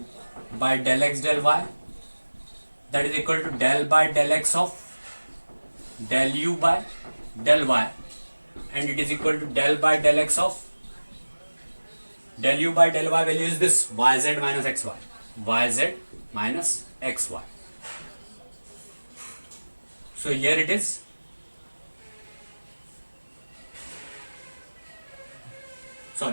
by del x del y, that is equal to del by del x of del u by del y, and it is equal to del by del x of del u by del y value is this yz minus xy, yz minus xy. So here it is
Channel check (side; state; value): both; inverted; correlation -1.00